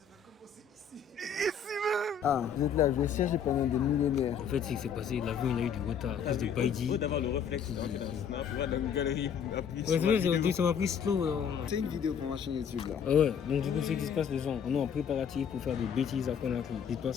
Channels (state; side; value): quieter; right; 7.3 dB